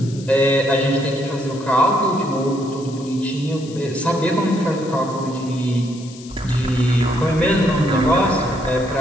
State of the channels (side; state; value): left; noise; hiss, 19 dB below the sound